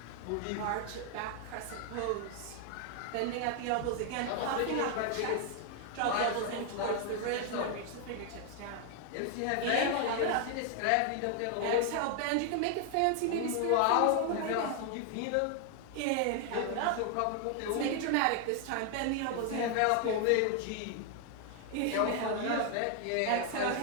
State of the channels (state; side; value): different; both; correlation 0.00